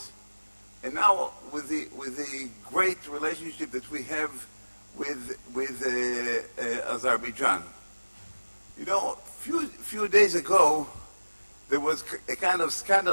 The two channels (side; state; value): both; inverted; correlation -1.00